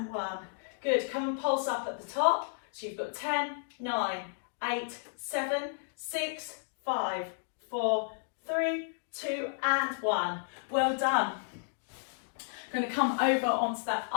one. Good, come and pulse up at the top. So you've got 10, 9, 8, 7, 6, 5, 4, 3, 2 and 1. Well done. I'm going to come over onto that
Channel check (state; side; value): silent; right; digital silence